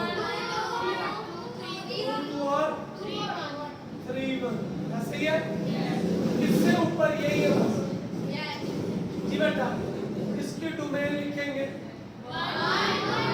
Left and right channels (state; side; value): identical; both; correlation 1.00